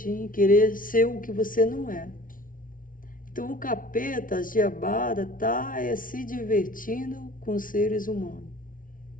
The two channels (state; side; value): late; right; 0.39 ms